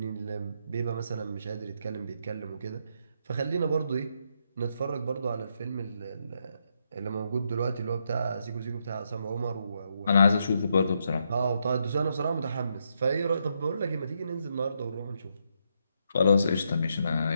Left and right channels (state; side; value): inverted; both; correlation -0.79